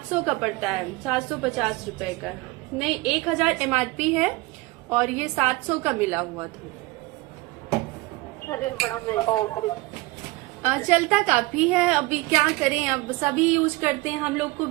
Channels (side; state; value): left; quieter; 22.3 dB